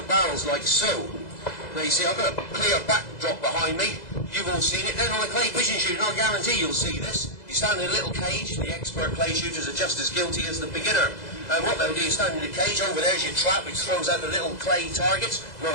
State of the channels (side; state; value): right; late; 2.0 ms